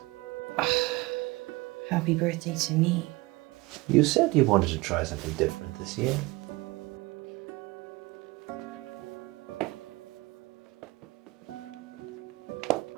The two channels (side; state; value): left; quieter; 22.7 dB